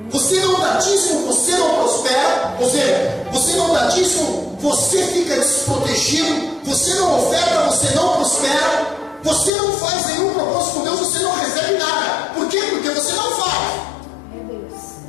Você não dá dízimo, você não prospera. Ou seja, você não dá dízimo, você fica desprotegido. Você não oferta, você não prospera. Você não faz nenhum propósito com Deus, você não recebe nada. Por quê? Porque você não faz.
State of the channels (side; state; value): right; drops out; at 9.5 s